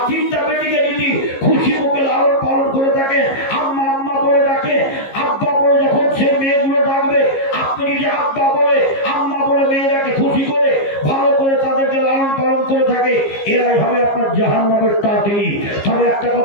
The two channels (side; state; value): right; late; 15 ms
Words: 3টা বেটিকে যদি খুশি মুখে লালন পালন করে থাকে, আম্মা আম্মা বলে ডাকে, আব্বা বলে যখন সে মেয়েগুলো ডাকবে, আপনি যদি আব্বা বলে আম্মা বলে মেয়েরাকে খুশি করে ভালো করে তাদেরকে লালন পালন করে থাকে, এরাই হবে আপনার জাহান্নামের তাঁতি। তবে একটা